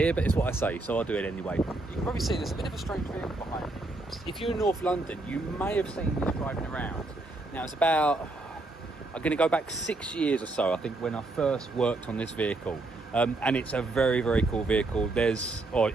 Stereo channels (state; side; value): quieter; left; 3.0 dB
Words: but it's what I say, so I'll do it anyway. You can probably see there's a bit of a strange vehicle behind me. If you're in North London, you may have seen this driving around. Now it's about, I'm going to go back 6 years or so, I think, when I first worked on this vehicle. And it's a very, very cool vehicle.